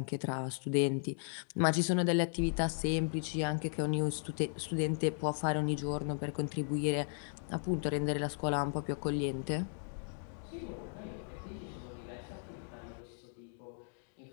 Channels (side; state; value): right; silent; digital silence